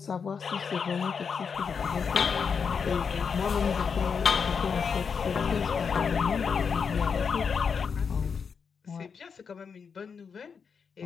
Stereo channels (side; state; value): right; quieter; 6.1 dB